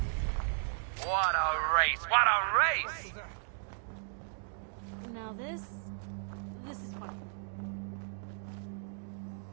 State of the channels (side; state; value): left; silent; digital silence